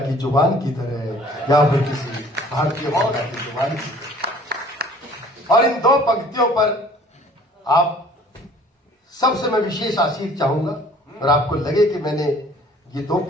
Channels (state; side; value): normal; both; correlation 0.52